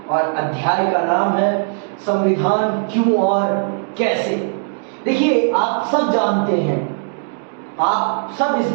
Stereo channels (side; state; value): left; silent; 67 dB below the other